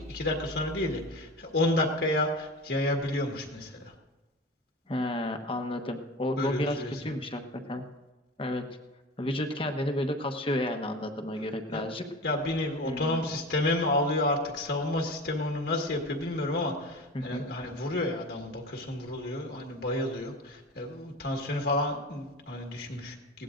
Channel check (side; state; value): both; normal; correlation 0.32